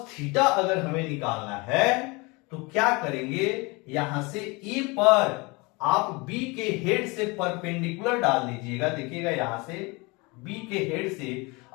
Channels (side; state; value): right; quieter; 26.6 dB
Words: थीटा अगर हमें निकालना है तो क्या करेंगे? यहां से ए पर आप बी के हेड से परपेंडिकुलर डाल दीजिएगा। देखिएगा, यहां से बी के हेड से